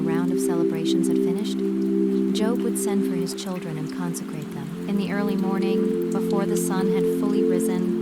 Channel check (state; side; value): identical; both; correlation 1.00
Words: round of celebrations had finished, Job would send for his children and consecrate them. In the early morning, before the sun had fully